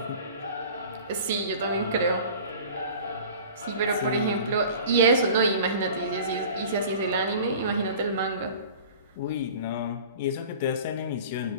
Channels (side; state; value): both; inverted; correlation -0.42